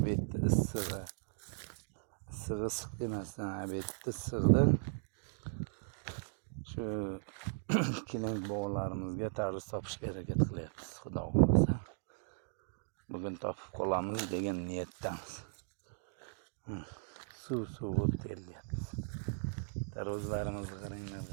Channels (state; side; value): silent; left; digital silence